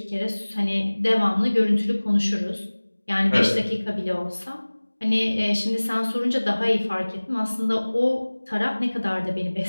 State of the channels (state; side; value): inverted; both; correlation -1.00